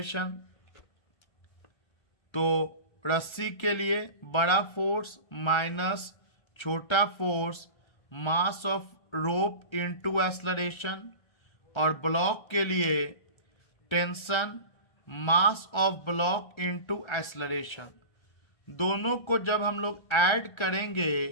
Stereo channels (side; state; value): right; late; 1.3 ms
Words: तो रस्सी के लिए बड़ा फोर्स माइनस छोटा force mass of rope into acceleration, और ब्लॉक के लिए tension mass of block into acceleration. दोनों को जब हम लोग ऐड करेंगे